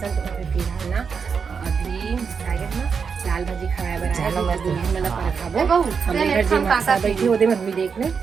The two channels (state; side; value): quieter; left; 6.0 dB